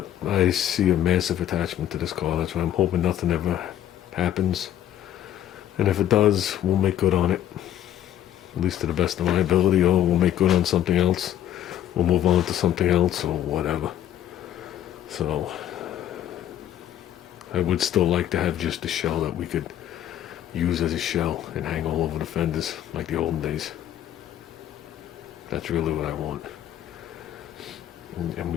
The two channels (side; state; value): right; quieter; 11.4 dB